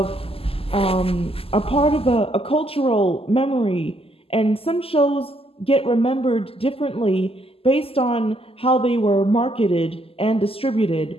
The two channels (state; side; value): late; right; 0.28 ms